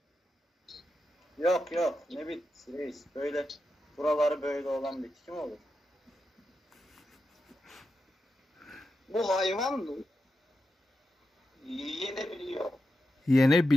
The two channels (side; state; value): both; normal; correlation 0.88